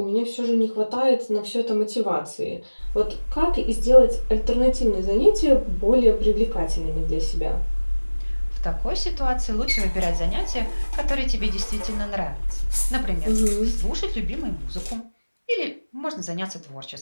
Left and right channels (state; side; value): inverted; both; correlation -1.00